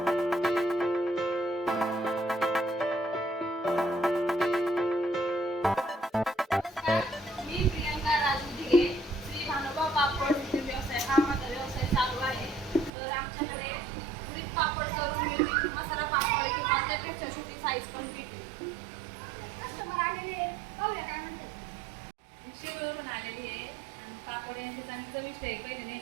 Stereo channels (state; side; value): drops out; left; at 12.9 s